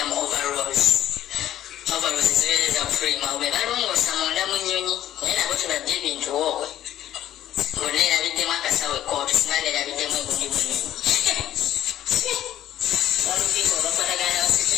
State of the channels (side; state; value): right; quieter; 12.3 dB